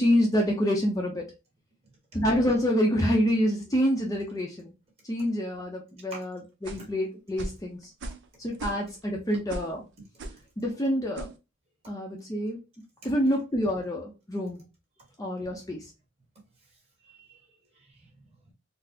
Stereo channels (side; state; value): both; normal; correlation 0.73